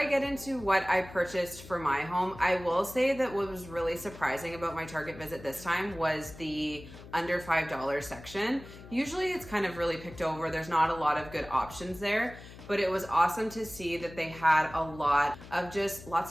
get into what I purchased for my home, I will say that what was really surprising about my Target visit this time was the under $5 section. Usually it's kind of really picked over. There's not a lot of good options there, but it was awesome to see that they had a lot of just lots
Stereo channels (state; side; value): noise; left; hum, 17 dB below the sound